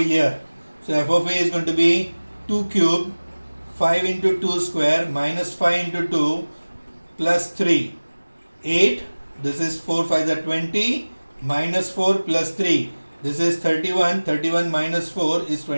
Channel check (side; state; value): both; inverted; correlation -1.00